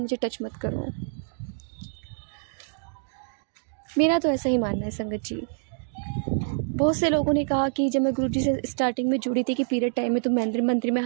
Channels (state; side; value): silent; left; digital silence